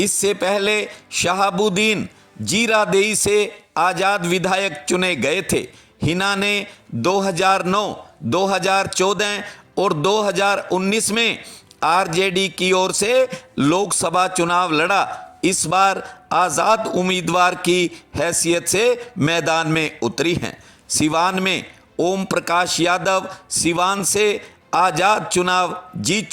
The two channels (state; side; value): identical; both; correlation 1.00